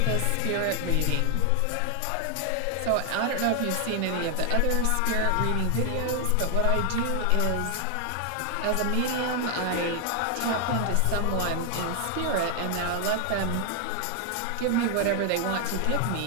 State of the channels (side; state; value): both; different; correlation 0.00